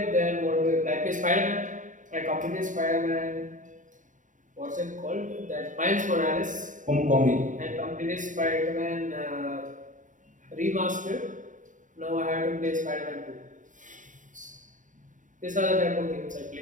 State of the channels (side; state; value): left; late; 0.37 ms